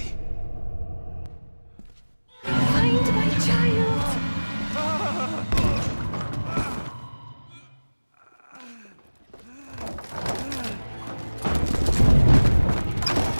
Find my child!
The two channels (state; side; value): inverted; both; correlation -1.00